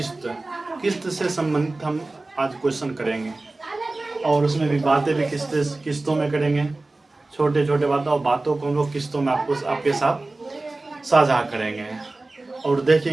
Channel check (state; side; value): quieter; left; 3.1 dB